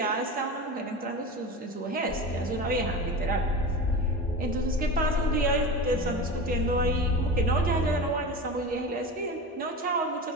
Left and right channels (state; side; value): normal; both; correlation 0.28